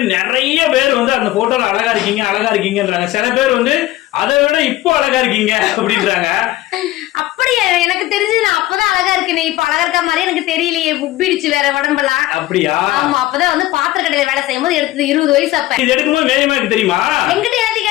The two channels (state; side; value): quieter; right; 16.4 dB